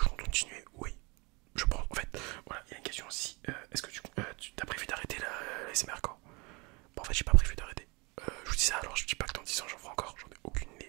compte continuer? Oui. Je pense, en fait, voilà, il y a une question aussi. Est-ce que tu as prévu d'arrêter la SMR quand? Bon, en fait, j'ai pas prévu d'arrêter. Je vous dis ça, alors je dis pas que dans 10 ans j'en ferai encore, j'en ai aucune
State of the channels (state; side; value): quieter; left; 28.1 dB